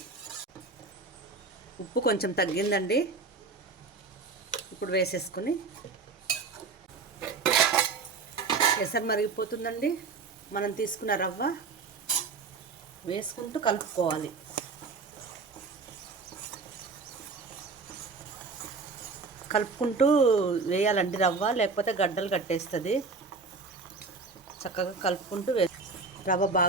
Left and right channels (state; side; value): quieter; left; 4.4 dB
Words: ఉప్పు కొంచెం తగ్గిందండి. ఇప్పుడు వేసేసుకుని ఎసరు మరిగిపోతుందండి. మనం తీసుకున్న రవ్వ వేసుకుంటూ కలుపుకోవాలి. కలుపుకుంటూ వేయాలండి రవ్వ, లేకపోతే గడ్డలు కట్టేస్తుంది. చక్కగా కలుపుకుంటూ రవ్వ